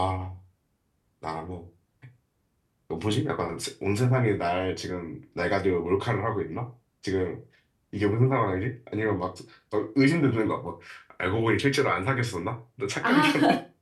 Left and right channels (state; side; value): identical; both; correlation 1.00